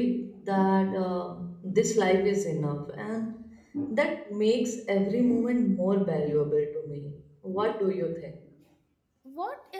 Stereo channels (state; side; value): identical; both; correlation 1.00